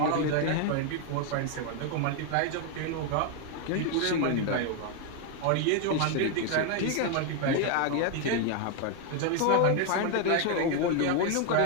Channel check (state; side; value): different; both; correlation 0.01